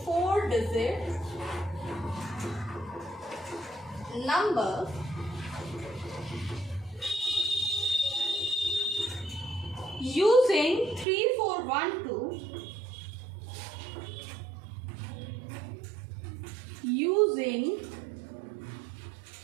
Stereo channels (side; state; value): left; drops out; at 11.1 s